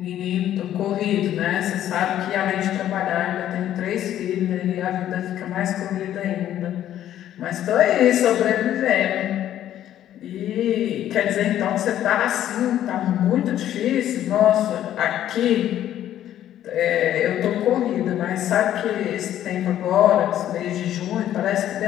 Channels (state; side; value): quieter; right; 11.7 dB